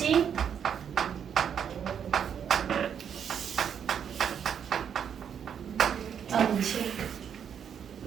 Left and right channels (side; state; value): left; quieter; 8.1 dB